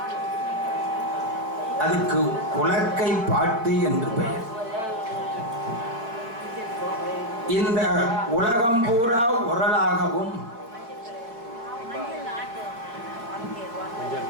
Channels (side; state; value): left; late; 4.5 ms